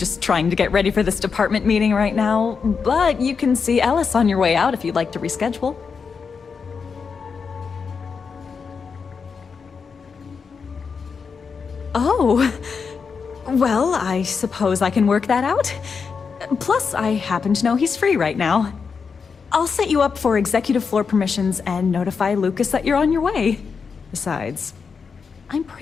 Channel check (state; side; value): quieter; right; 5.6 dB